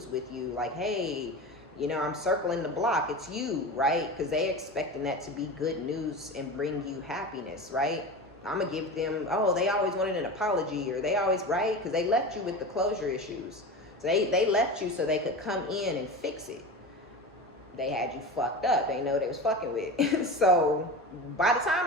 with you. Like, hey, you know, I'm circling the block. It's you, right? Because they expecting that to be good news and bring you happiness, right? I'm going to give them, oh, they always wanted an apology, or they always, right? Because they left you with the closure issues. So they left you so they could come in and fix it. They had you fucked up. They know they was fucking with. So by the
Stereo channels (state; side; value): normal; both; correlation 0.29